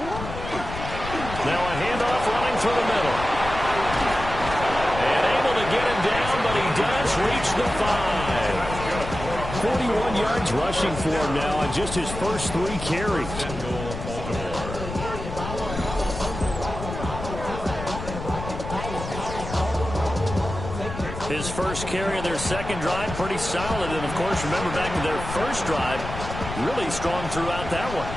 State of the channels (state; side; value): noise; left; rumble, 8 dB below the sound